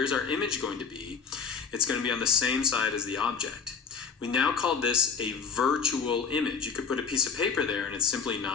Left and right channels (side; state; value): right; quieter; 6.0 dB